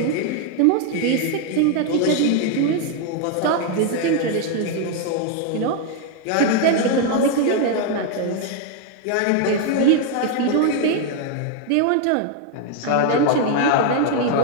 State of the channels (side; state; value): both; different; correlation 0.01